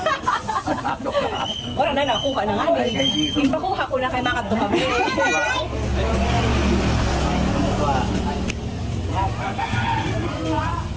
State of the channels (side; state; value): both; identical; correlation 1.00